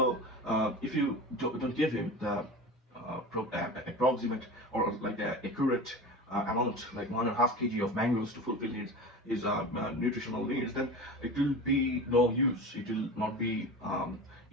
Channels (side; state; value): both; normal; correlation 0.31